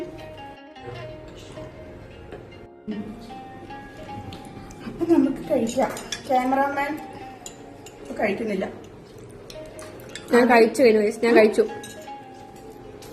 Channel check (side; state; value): both; identical; correlation 1.00